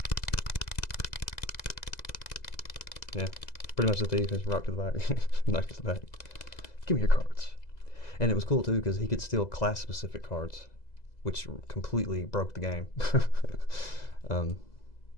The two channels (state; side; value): late; right; 2.0 ms